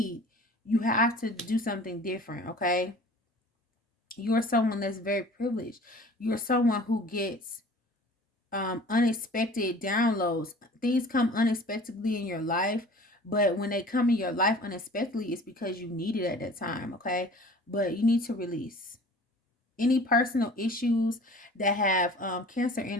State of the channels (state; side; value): normal; both; correlation 0.46